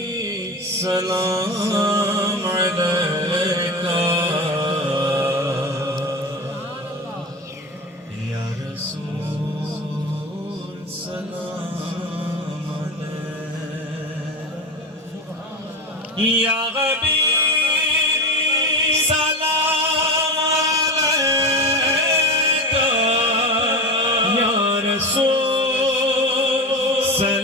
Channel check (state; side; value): normal; both; correlation 0.25